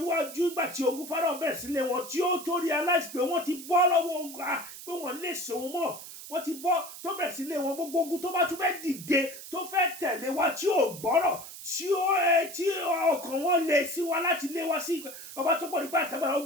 ìgbà tí ogun Fáráò bẹ̀rẹ̀ sílé wọn, tí ó tó realize pé wọ́n ti bọ́ lọ́wọ́ ogun, pé wọ́n lè sòun mọ́. Wọ́n ti bọ́ tó bẹ̀rẹ̀ sílé wọn, gbogbo ogun tó bá tún fẹ́ dìde, tó fẹ́ tẹ̀lé wa, tí ò gbọ́rọ̀, tí ọkàn wọn lè sí wa láti lé wa sí ọba tó pọ̀ nípa àtàgbára.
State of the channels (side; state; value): right; noise; hiss, 13 dB below the sound